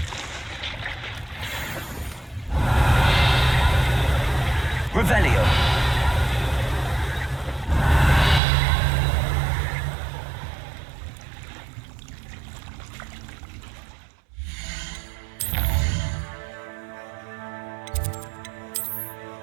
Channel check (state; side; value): drops out; left; at 8.4 s